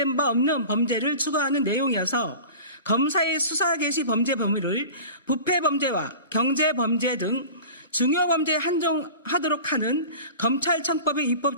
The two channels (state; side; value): inverted; both; correlation -0.37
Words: 바 없는 범죄를 추가하는 내용이어서 검사의 수사 개시 범죄 범위를 부패 범죄와 경제 범죄 등 중요 범죄에 한정하도록 하는 검찰청법의 입법